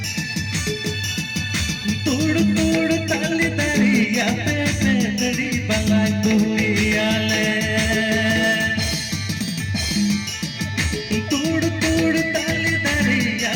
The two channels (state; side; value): identical; both; correlation 1.00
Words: तोड़ ताली दरिया पे पेतड़ी बलाई बुगियाल तोड़ ताली दरिया